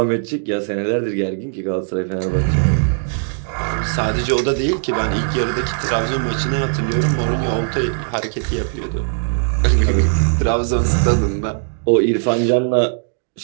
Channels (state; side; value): silent; left; 65 dB below the other